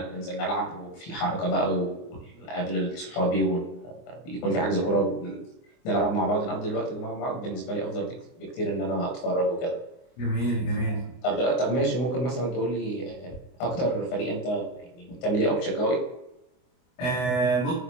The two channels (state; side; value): late; right; 24 ms